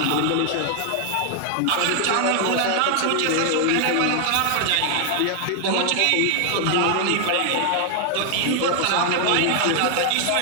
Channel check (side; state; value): both; different; correlation 0.00